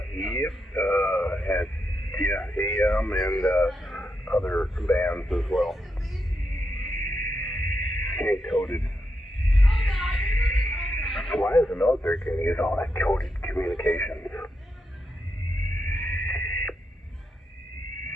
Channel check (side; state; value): both; normal; correlation 0.84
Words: yep, had AM and other bands as well. And coded. Why is the military going to use all that coded communications?